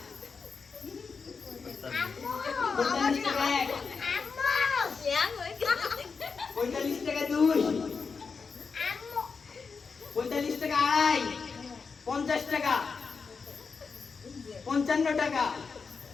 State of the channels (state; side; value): quieter; right; 5.1 dB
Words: 45 টাকা 1, 45 টাকা 2, 45 টাকা 2.5, 50 টাকা, 55 টাকা।